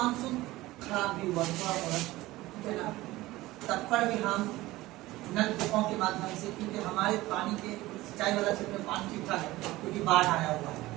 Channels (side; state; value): left; quieter; 18.1 dB